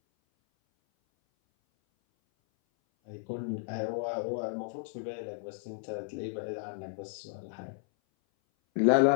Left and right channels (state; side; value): silent; right; 56 dB below the other